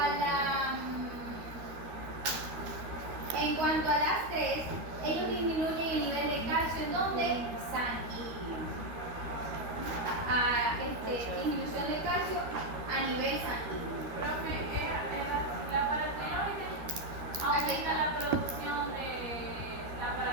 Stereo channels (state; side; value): late; left; 13 ms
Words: En cuanto a las tres, ellos disminuyen el nivel de calcio en donde sanguíneo. Disminución de calcio a nivel sanguíneo. Profe, la paratiroide aumenta la producción de la